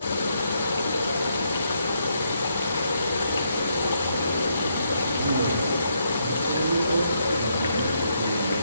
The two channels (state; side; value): inverted; both; correlation -0.77